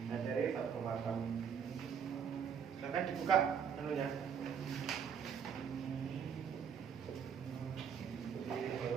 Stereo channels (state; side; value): quieter; left; 7.3 dB